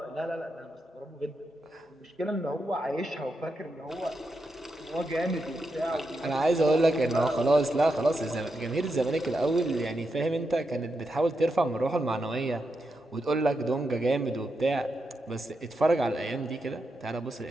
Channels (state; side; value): normal; both; correlation 0.85